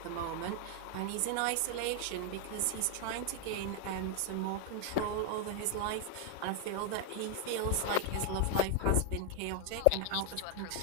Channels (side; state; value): both; different; correlation 0.00